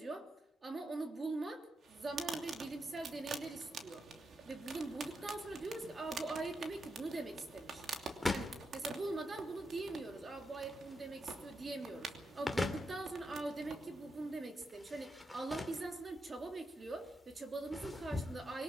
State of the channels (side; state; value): both; normal; correlation 0.85